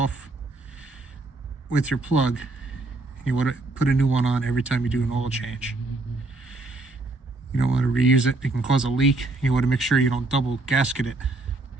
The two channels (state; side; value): quieter; left; 3.1 dB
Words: with your plug. You want to put a new one on every time you do an oil change. You don't want to reuse it. It can cause a leak. You want to make sure you don't double gasket it